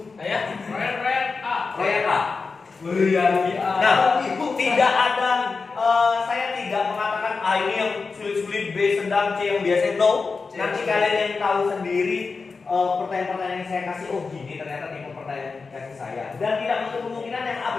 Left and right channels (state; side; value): quieter; right; 4.5 dB